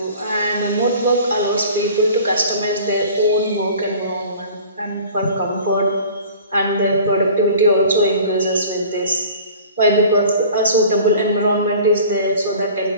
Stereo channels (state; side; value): inverted; both; correlation -0.45